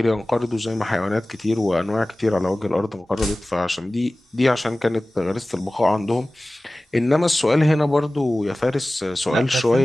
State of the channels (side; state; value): both; normal; correlation 0.98